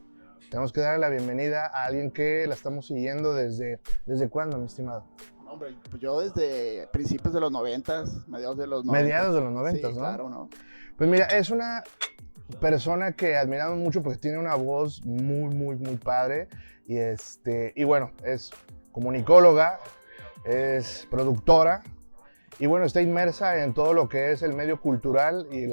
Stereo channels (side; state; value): both; inverted; correlation -1.00